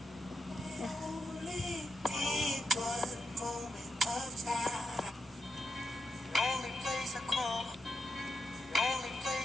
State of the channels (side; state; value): both; normal; correlation 0.84